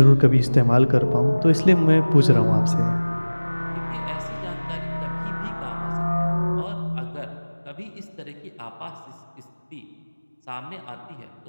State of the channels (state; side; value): inverted; both; correlation -1.00